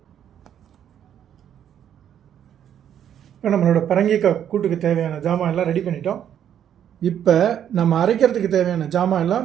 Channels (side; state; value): left; quieter; 9.7 dB